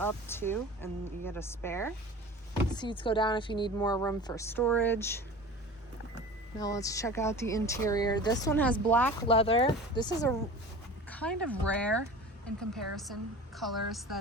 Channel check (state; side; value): normal; both; correlation 0.37